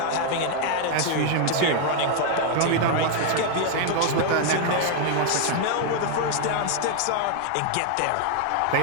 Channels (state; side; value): different; both; correlation 0.00